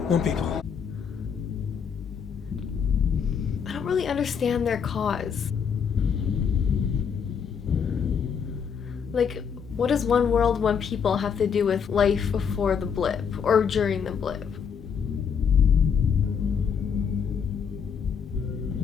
one people. I don't really understand their cause. Like, what does one world, one people have to do with life before the blip or during the blip?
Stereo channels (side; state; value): right; quieter; 6.9 dB